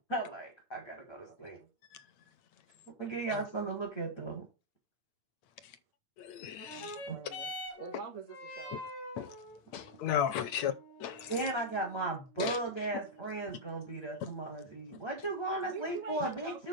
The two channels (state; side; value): late; right; 8.7 ms